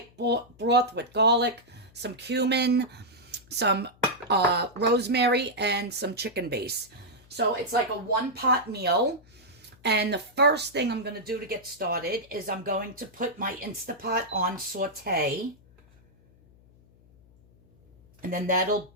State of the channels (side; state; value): left; noise; hum, 28 dB below the sound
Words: broth with garlic, some cumin, some rosemary, and some chicken base. So it's like a one-pot meal. And the first thing I'm going to do to get started is I'm going to put my Instapot on saute. And then that'll